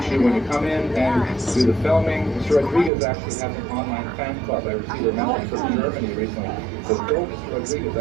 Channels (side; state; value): left; drops out; at 2.9 s